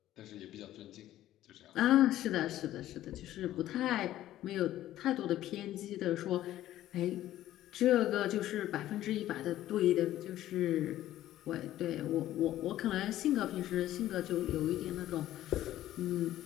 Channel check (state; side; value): quieter; right; 13.6 dB